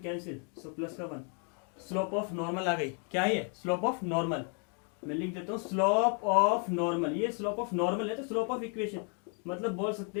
कैंसिल, सो प्लस का 1। स्लोप ऑफ नॉर्मल आ गई, क्या है, स्लोप ऑफ नॉर्मल। मैं लिख देता हूँ स्लोप ऑफ नॉर्मल। ये स्लोप ऑफ नॉर्मल है, तो स्लोप ऑफ इक्वेशन, मतलब बोल सकते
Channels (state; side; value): quieter; right; 39.9 dB